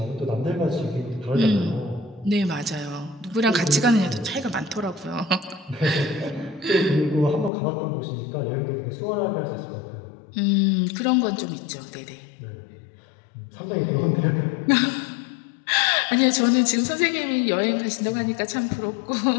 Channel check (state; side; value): drops out; right; at 7.5 s